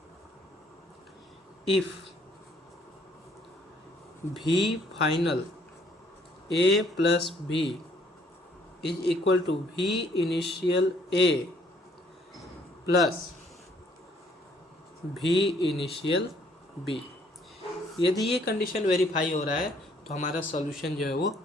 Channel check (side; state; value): both; normal; correlation 0.64